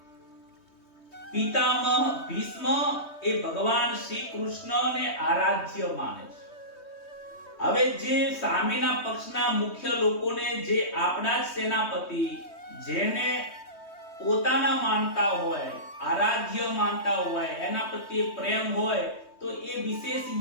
પિતામહ ભીષ્મ એ ભગવાન શ્રી કૃષ્ણને આરાધ્ય માને છે. હવે જે સામેના પક્ષના મુખ્ય લોકોને, જે આપણા જ સેનાપતિ, જેને પોતાના માનતા હોય, આરાધ્ય માનતા હોય, એના પ્રત્યે પ્રેમ હોય, તો એ વિશેષ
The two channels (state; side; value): late; right; 3.2 ms